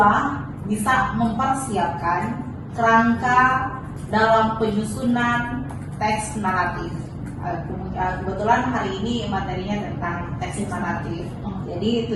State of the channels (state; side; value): identical; both; correlation 1.00